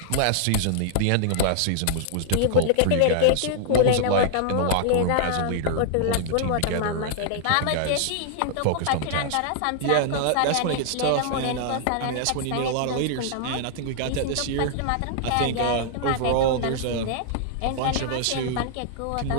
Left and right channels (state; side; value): different; both; correlation -0.01